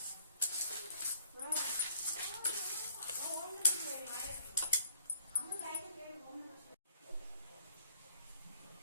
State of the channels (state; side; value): inverted; both; correlation -0.61